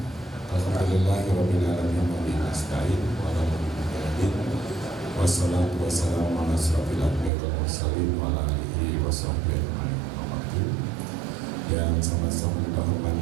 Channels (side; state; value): left; drops out; at 7.3 s